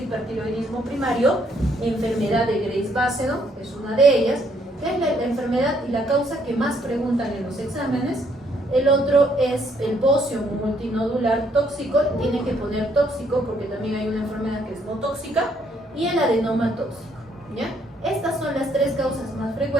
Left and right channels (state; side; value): normal; both; correlation 0.69